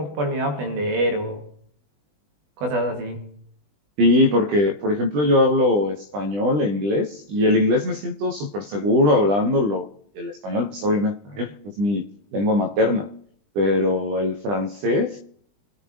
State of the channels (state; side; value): late; left; 20 ms